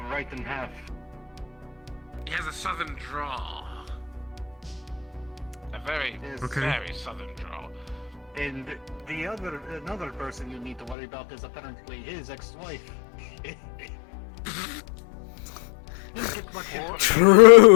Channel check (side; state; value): right; drops out; at 11.0 s